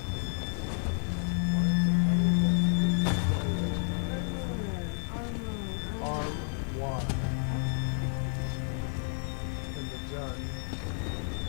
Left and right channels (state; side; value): silent; right; 57 dB below the other